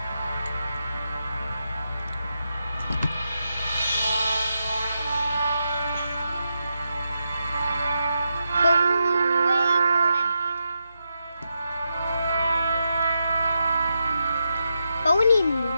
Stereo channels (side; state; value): both; inverted; correlation -0.86